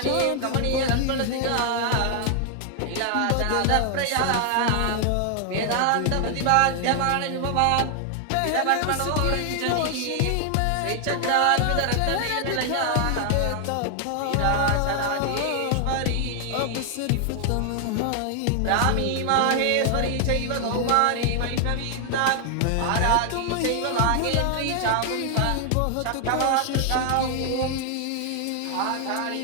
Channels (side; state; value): both; different; correlation 0.00